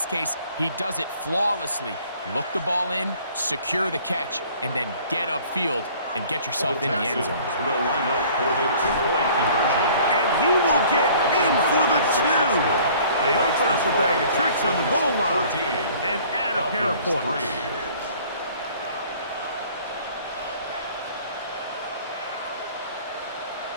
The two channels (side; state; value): both; inverted; correlation -0.52